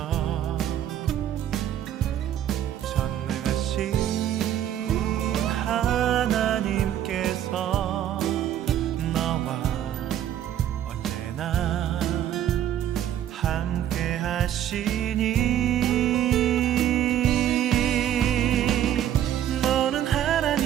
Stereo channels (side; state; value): left; quieter; 11.0 dB